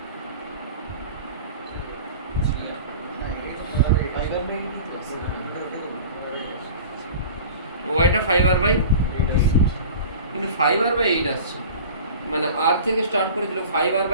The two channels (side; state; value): both; inverted; correlation -0.39